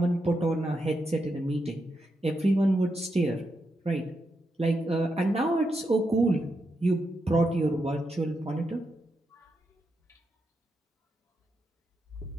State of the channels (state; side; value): normal; both; correlation 0.84